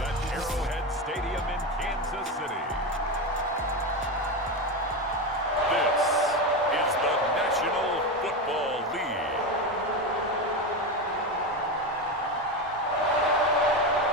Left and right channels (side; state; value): both; normal; correlation 0.16